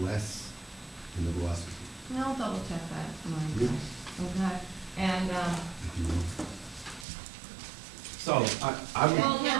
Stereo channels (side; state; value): left; drops out; at 7.1 s